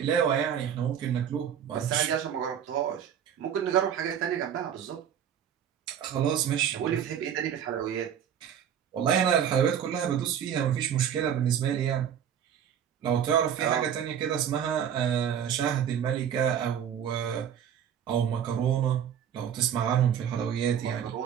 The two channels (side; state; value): left; quieter; 8.9 dB